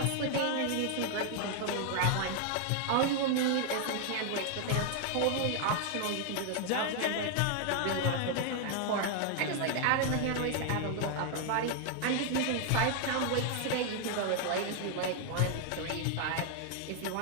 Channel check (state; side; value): different; both; correlation 0.00